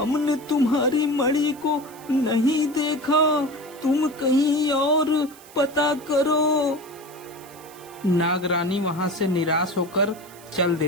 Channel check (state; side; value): noise; right; hiss, 21 dB below the sound